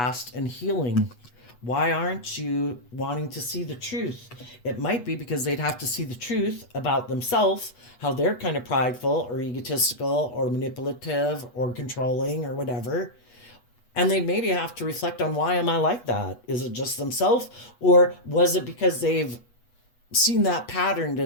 and healing. Why aren't you wanting to see the truth? It might be because they'd have to see the truth about themselves, how they're kind of prideful or egotistical or manipulative or controlling or whatever. And they maybe have to reflect on, why am I like that? Is it just themselves? Or was it because they've seen that patterned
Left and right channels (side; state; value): right; late; 8.2 ms